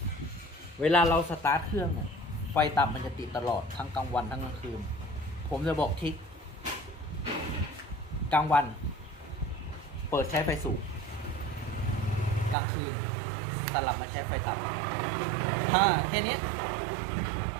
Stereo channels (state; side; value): drops out; left; at 12.6 s